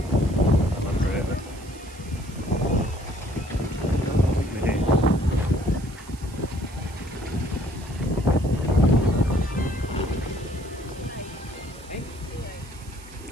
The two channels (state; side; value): noise; right; hiss, 21 dB below the sound